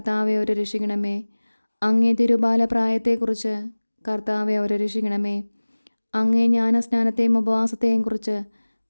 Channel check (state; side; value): inverted; both; correlation -1.00